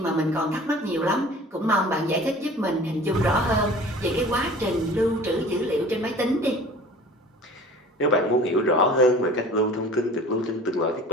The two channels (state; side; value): normal; both; correlation 0.44